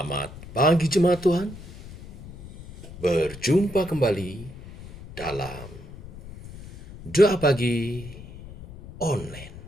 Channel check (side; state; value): left; noise; rumble, 15 dB below the sound